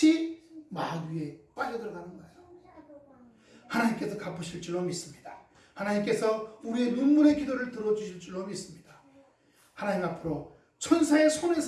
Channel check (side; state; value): both; identical; correlation 1.00